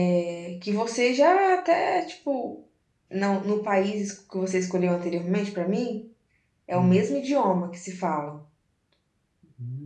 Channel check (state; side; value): identical; both; correlation 1.00